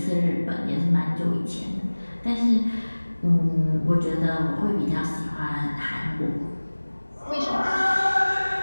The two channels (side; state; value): both; inverted; correlation -1.00